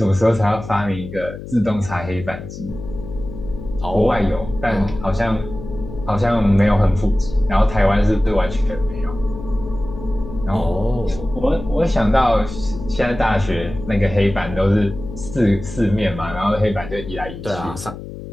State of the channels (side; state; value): left; noise; hum, 11 dB below the sound